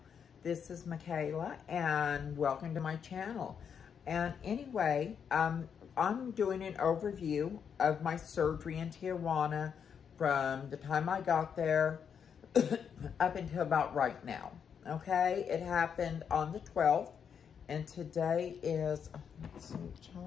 This is Michaela and welcome to my channel. And anyway, I'm doing an overview of my surgery in Tijuana from the time I got there up until about right now. Okay, it happened on the 12th and today is, let's see,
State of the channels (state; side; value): quieter; right; 7.3 dB